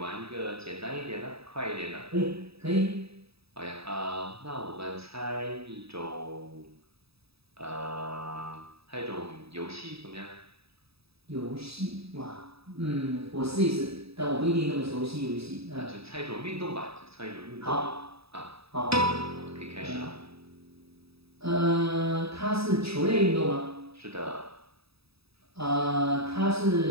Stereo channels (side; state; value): left; late; 0.77 ms